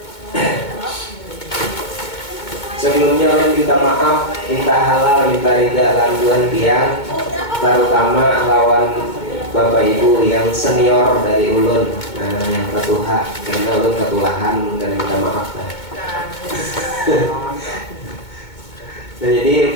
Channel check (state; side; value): late; right; 2.2 ms